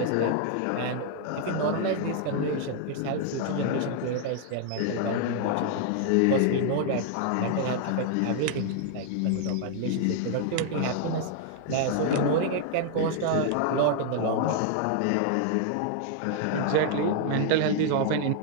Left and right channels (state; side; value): different; both; correlation 0.00